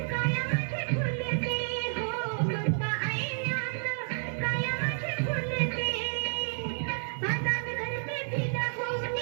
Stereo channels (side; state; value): left; silent; digital silence